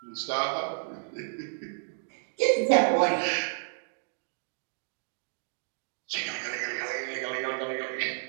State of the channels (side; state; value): left; silent; digital silence